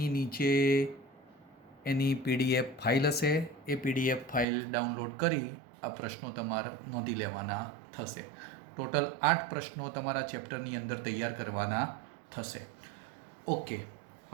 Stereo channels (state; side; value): drops out; left; at 4.5 s